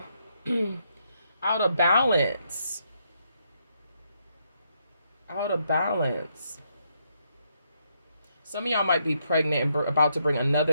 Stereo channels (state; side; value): inverted; both; correlation -0.77